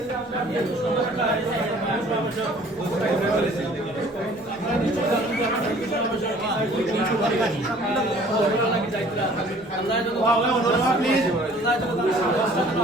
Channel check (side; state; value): both; normal; correlation 0.53